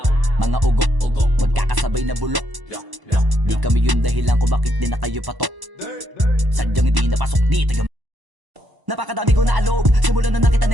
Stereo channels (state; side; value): late; left; 1.0 ms